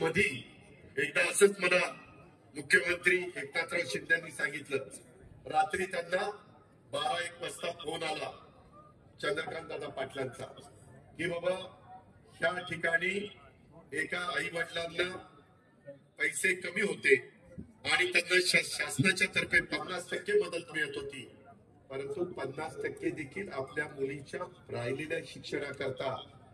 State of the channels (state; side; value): identical; both; correlation 1.00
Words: एकदा असंच मला मुख्यमंत्री एकनाथराव शिंदेंनी सांगितलं, रात्री त्यांना 12-1 वाजता फोन आला चंद्रकांत दादा पाटलांचा की बाबा ह्या ठिकाणी एका आई वडिलांना पैसे कमी होते आणि त्यांना शासनाच्या तर्फे 50% मदत मिळत होती, परंतु 50% देखील आपल्या मुलीच्या राहिलेल्या शिक्षणाकरता